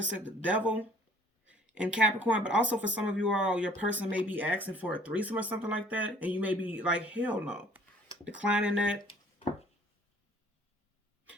said the Devil in Capricorn, but also for some of you all, your person may be asking for a threesome or something like that, and you may be like, hell no, declining that.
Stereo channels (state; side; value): normal; both; correlation 0.55